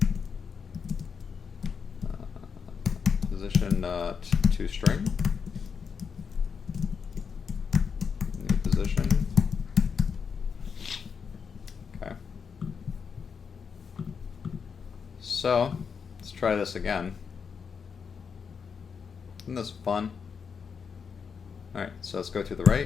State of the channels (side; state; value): right; quieter; 6.2 dB